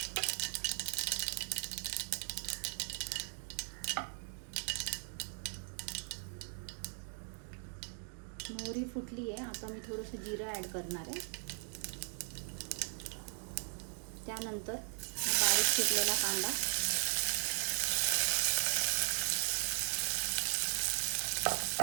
मोहरी फुटली आहे। आता मी थोडंसं जिरं ॲड करणार आहे। त्यानंतर बारीक चिरलेला कांदा,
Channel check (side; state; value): left; silent; 52 dB below the other